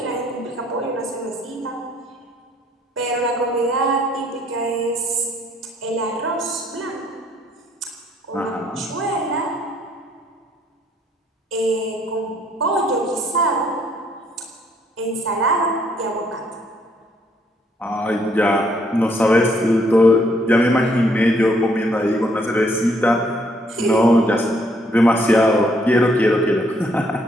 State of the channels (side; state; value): both; normal; correlation 0.68